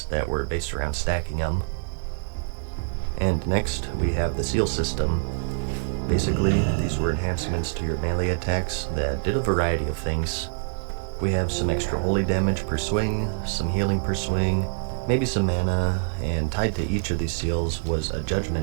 that were based around stacking them. And next, we have the seal system. Basically, these were enhancements to your melee attacks that did a variety of things. We have some extra holy damage per swing, some healing per swing, maybe some mana, and tied to each of these seals was a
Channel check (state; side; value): silent; left; 61 dB below the other